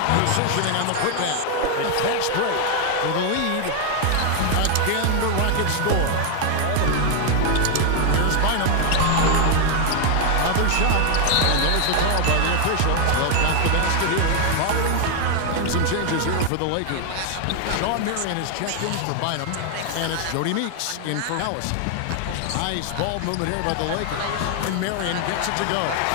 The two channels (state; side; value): different; both; correlation 0.00